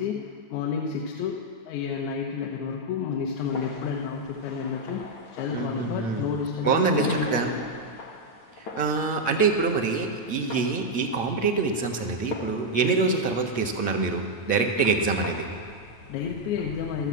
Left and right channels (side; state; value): right; late; 8.7 ms